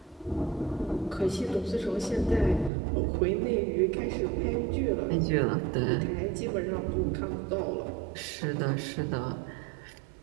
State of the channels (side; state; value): left; drops out; at 2.7 s